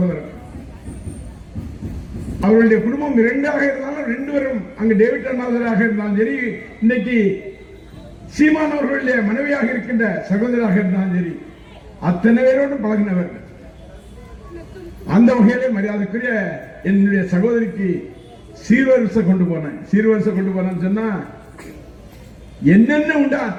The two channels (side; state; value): both; identical; correlation 1.00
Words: அவர்களுடைய குடும்பம் 2ஆக இருந்தாலும் 2 பேரும் அங்கு டேவிட் அண்ணாதராக இருந்தாலும் சரி, இன்னைக்கு சீமான் அவர்களுடைய மனைவியாக இருக்கின்ற சகோதராக இருந்தாலும் சரி, அத்தனை பேரோடும் பழகினவர். அந்த வகையிலே மரியாதைக்குரிய என்னுடைய சகோதரிக்கு சீர்வரிசை கொண்டு போனேன்னு சொன்னா என்னென்ன உண்டா